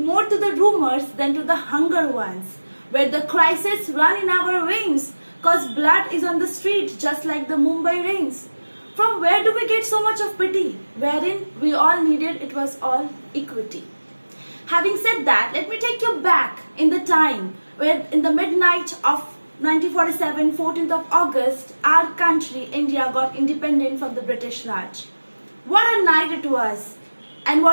more to the rumors than to the hunger ones, where the crises run in our veins cause blood is on the street just like the Mumbai rains. From where do we get so much of pity, wherein we all needed it was all equity? Having said that, let me take you back in the time where in the midnight of 1947, 14th of August, our country, India, got independent from the British Raj. What a night it was and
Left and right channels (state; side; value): inverted; both; correlation -1.00